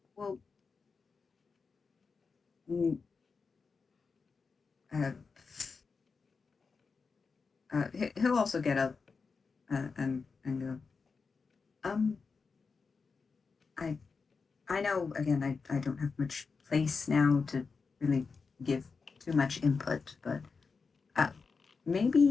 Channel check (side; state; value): right; quieter; 4.9 dB